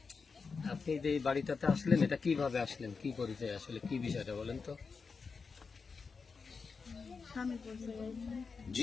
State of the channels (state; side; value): quieter; right; 5.0 dB